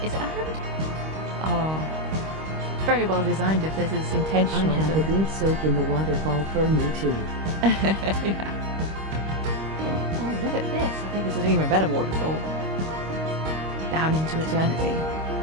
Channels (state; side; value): late; left; 25 ms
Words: Is it a hand? Oh. Very well designed if this is intentional. I have a good soak in the waterfall for me too. Yeah. Oh, look at this. I think this is an even better waterfall. Down into eternity.